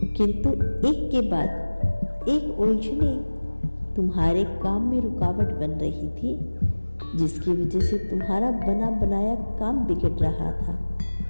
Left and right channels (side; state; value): both; inverted; correlation -1.00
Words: किंतु एक के बाद एक उलझने तुम्हारे काम में रुकावट बन रही थी, जिसकी वजह से तुम्हारा बना बनाया काम बिगड़ रहा था।